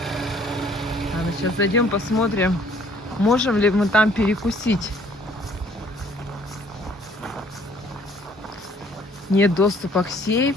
Ладно, сейчас зайдем, посмотрим, можем ли мы там перекусить. Нет доступа к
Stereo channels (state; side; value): normal; both; correlation 0.59